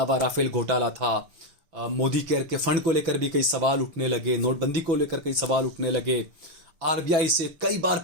राफेल घोटाला था, मोदी केयर के फंड को लेकर भी कई सवाल उठने लगे, नोटबंदी को लेकर कई सवाल उठने लगे, आरबीआई से कई बार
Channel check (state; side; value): late; left; 6.0 ms